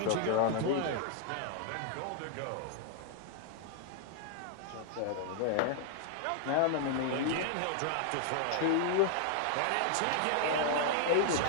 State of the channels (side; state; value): both; different; correlation 0.00